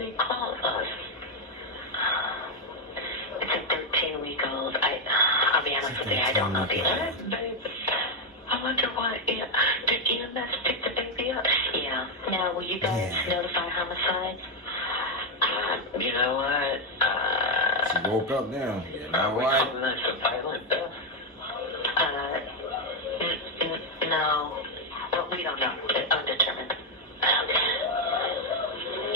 call us? It's a 13-week-old. I'll be honest with you, I don't know the answer. I wonder what, did EMS pick the baby up? Yeah. Now, will you guys notify homicide? You know what? she woke up now. You know We're what? calling this a violent death? No. Well, we don't know. Undetermined.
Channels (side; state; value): both; normal; correlation 0.03